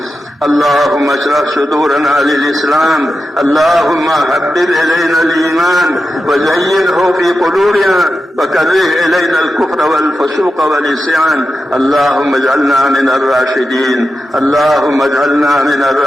اللهم اشرح صدورنا للإسلام. اللهم حبب إلينا الإيمان وزينه في قلوبنا وكره إلينا الكفر والفسوق والعصيان. اللهم اجعلنا من الراشدين. اللهم اجعلنا من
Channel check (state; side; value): normal; both; correlation 0.90